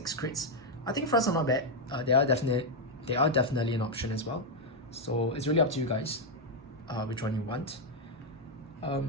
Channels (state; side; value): normal; both; correlation 0.01